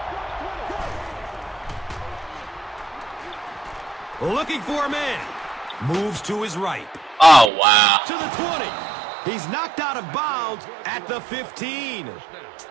Looking for a man. Moves to his right. Oh, wow. To the 20. He's knocked out of bounds at the 15.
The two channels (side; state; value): left; drops out; at 7.5 s